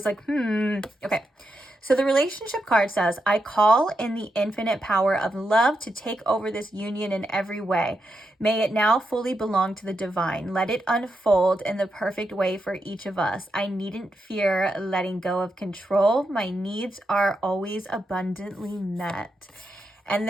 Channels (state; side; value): normal; both; correlation 0.84